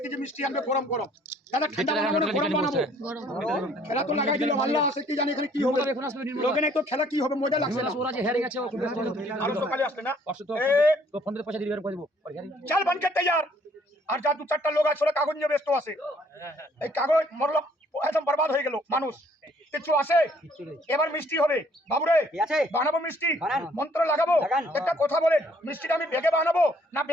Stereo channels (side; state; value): both; normal; correlation 0.62